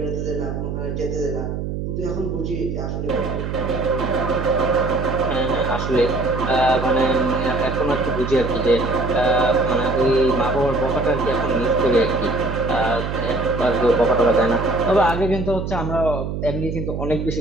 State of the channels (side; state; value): right; noise; hum, 4 dB below the sound